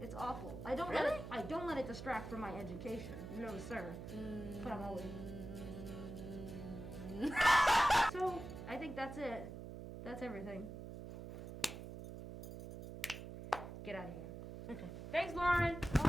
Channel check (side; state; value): right; noise; hum, 9 dB below the sound